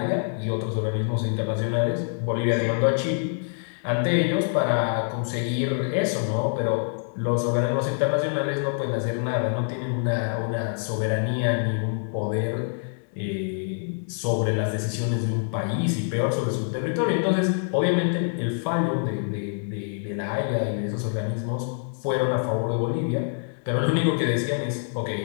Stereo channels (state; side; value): silent; right; digital silence